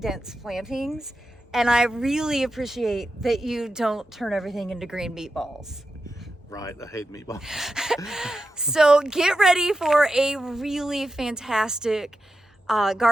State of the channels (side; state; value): both; normal; correlation 0.89